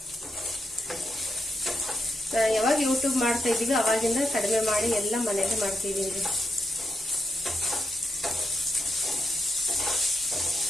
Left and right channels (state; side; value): normal; both; correlation 0.84